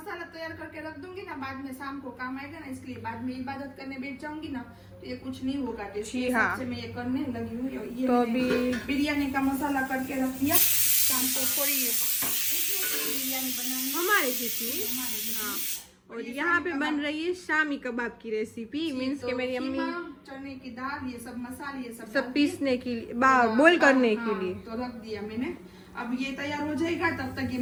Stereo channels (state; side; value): identical; both; correlation 1.00